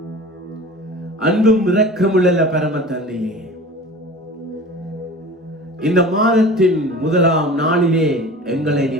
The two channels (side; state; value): both; normal; correlation 0.39